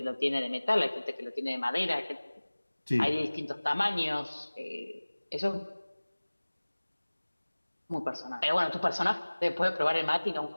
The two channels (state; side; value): inverted; both; correlation -1.00